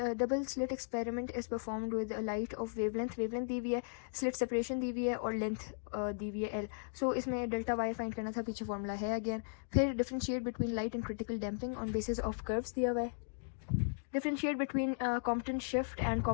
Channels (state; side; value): silent; right; digital silence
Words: slit experiment is performed with light of wavelength दी हुई है, स्लिट सेपरेशन दी हुई है, और लेंथ दी हुई है L। सो इसमें डेल्टा वाई फाइंड करना था, पीछे फॉर्मूला है अगेन। फिर differentiate between light and critical damping on basis of curves दिया हुआ है। Differentiate between Compton shift and